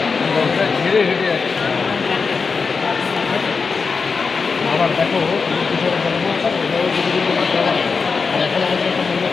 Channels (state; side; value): quieter; right; 5.0 dB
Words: ধীরে হেঁটে যাচ্ছে। আবার দেখো এখন আমাদের একটা মনে